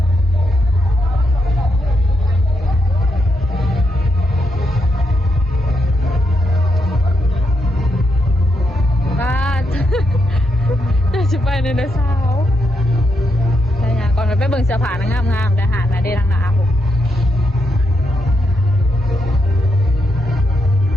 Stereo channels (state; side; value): normal; both; correlation 0.81